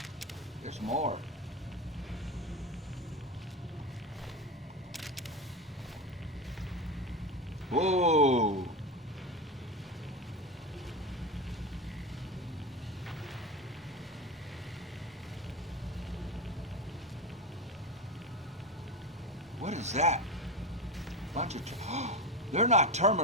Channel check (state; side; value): normal; both; correlation 0.19